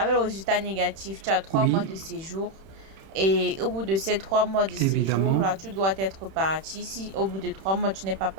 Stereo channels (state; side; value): late; left; 31 ms